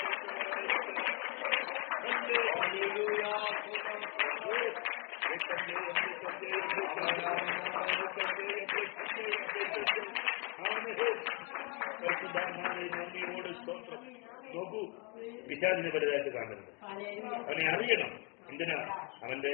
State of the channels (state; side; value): quieter; right; 29.7 dB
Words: നോക്കൂ, പിശാചിനെ വലുതായിട്ട് കാണരുത്. അവനെ അറിയണം. എന്തിനാ? അവന്റെ